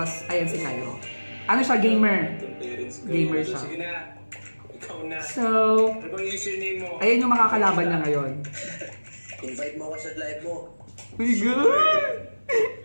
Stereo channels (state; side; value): inverted; both; correlation -1.00